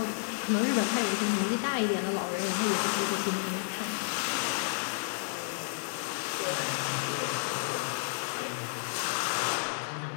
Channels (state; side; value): silent; right; 57 dB below the other